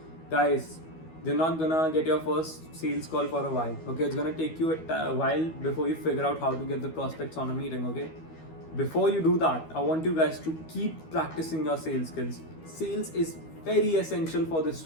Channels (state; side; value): late; right; 12 ms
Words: guys, you're not gonna get your first sales call for a while. Okay, it's gonna take you a while before you figure out how to get the prospects on a meeting. Okay, before you do that, I want you guys to keep practicing your sales skills. Sales is very essential for this